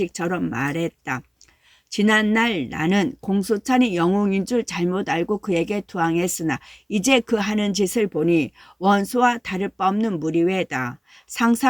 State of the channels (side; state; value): both; identical; correlation 1.00